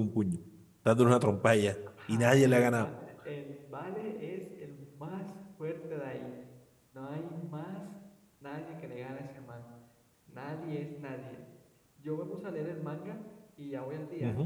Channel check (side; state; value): both; identical; correlation 1.00